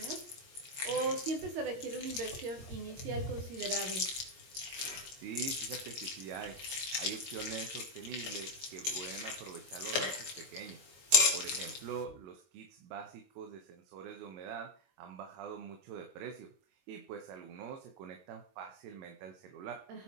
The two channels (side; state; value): left; late; 22 ms